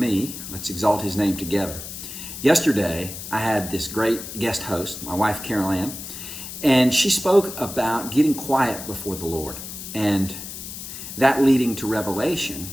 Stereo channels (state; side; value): noise; left; hiss, 10 dB below the sound